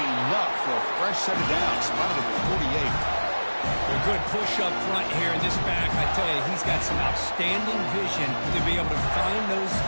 enough for a fresh set of downs, spotted at the 48. A good push up front here in this back. I tell you, he's got some outstanding vision to be able to find those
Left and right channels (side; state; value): both; inverted; correlation -1.00